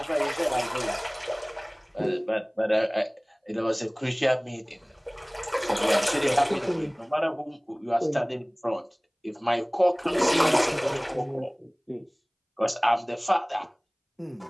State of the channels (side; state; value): both; identical; correlation 1.00